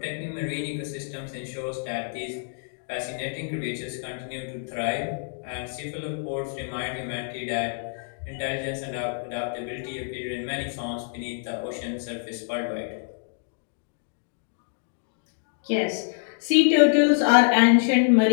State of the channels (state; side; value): silent; right; digital silence